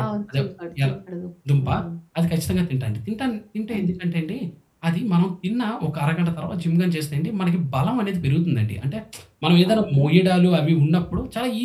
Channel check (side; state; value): both; identical; correlation 1.00